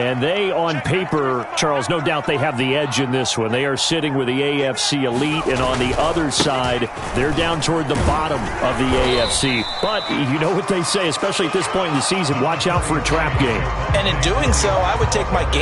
they, on paper, Charles, no doubt they have the edge in this one. They are sitting with the AFC elite, and on the other side, they're down toward the bottom of the AFC. But you know what they say, especially at this point in the season, watch out for a trap game. And in doing so, I would take my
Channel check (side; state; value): both; identical; correlation 1.00